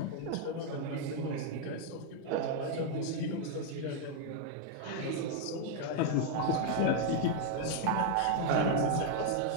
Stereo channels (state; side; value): different; both; correlation 0.00